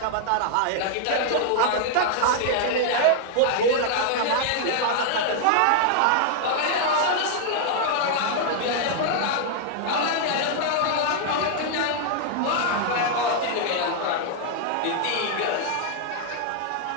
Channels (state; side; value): different; both; correlation 0.00